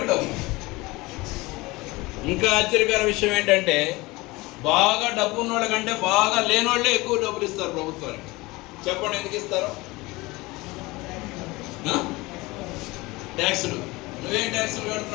డబ్బు. ఇంకా ఆశ్చర్యకర విషయం ఏంటంటే బాగా డబ్బు ఉన్నోళ్ళ కంటే బాగా లేనోళ్ళే ఎక్కువ డబ్బులు ఇస్తారు ప్రభుత్వానికి. చెప్పండి ఎందుకు ఇస్తారు? ట్యాక్సులు. నువ్వేం ట్యాక్సులు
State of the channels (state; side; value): quieter; right; 22.0 dB